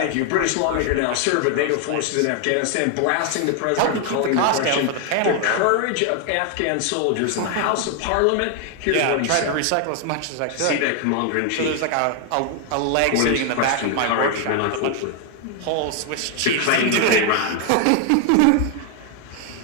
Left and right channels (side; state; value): both; different; correlation 0.01